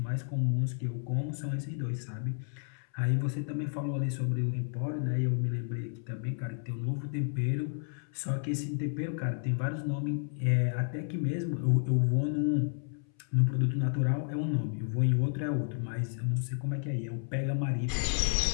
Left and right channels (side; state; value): right; silent; 57 dB below the other